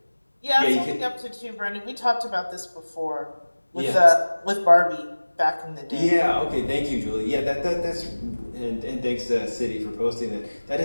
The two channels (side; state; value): both; inverted; correlation -1.00